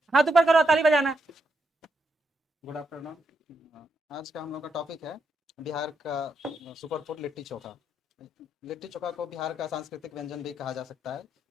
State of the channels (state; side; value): normal; both; correlation 0.81